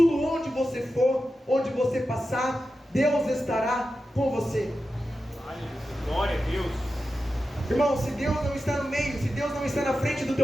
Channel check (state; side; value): normal; both; correlation 0.91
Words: onde você for, onde você passar, Deus estará com você. Glória a Deus. Irmão, se Deus não está no meio, se Deus não está na frente do